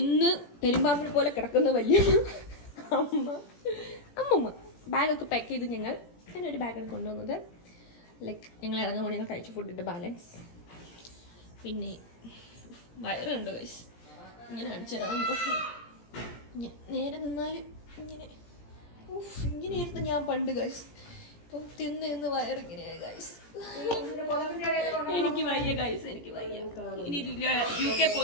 പെരുമ്പാമ്പിനെ പോലെ കിടക്കുന്ന വലിയ അമ്മൂമ്മ ബാഗൊക്കെ പാക്ക് ചെയ്ത് ഞാനൊരു ബാഗാണ് കൊണ്ടുവന്നത്. ലൈക്ക് ഞങ്ങൾ ഇറങ്ങുമ്പോൾ ഞങ്ങൾ കഴിച്ച ഫുഡിൻ്റെ ബാലൻസ്. പിന്നെ വയറുണ്ട് ഗൈസ്, ഇങ്ങനെ അടിച്ചിറങ്ങും. നേരെ നിന്നാൽ ഇങ്ങനെയായിരുന്നു ഞാൻ പണ്ട് ഗൈസ്. ഇപ്പം തിന്ന് വയറിങ്ങനെയായി ഗൈസ്. എനിക്ക് വയ്യ ഗൈസ്, എനിക്ക് വയ്യ. ഇനി UK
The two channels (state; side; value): late; right; 17 ms